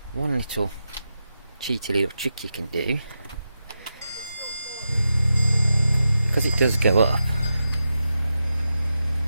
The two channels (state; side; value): inverted; both; correlation -0.89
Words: one little cheeky little trick you can do, because it does go up,